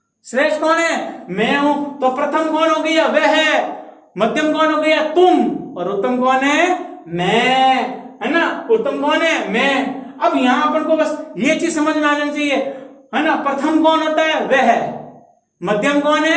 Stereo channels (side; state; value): both; identical; correlation 1.00